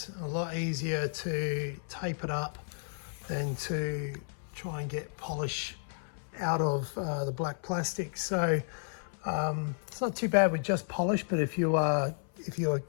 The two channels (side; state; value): right; silent; 56 dB below the other